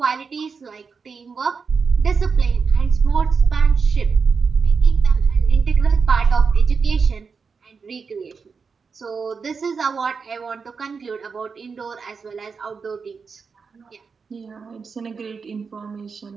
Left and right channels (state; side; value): quieter; left; 5.3 dB